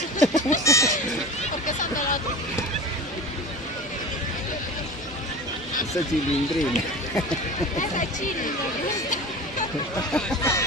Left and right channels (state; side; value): normal; both; correlation 0.33